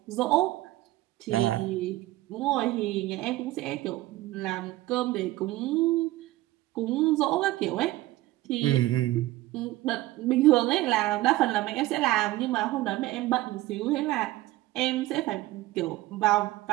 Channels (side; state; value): left; quieter; 17.5 dB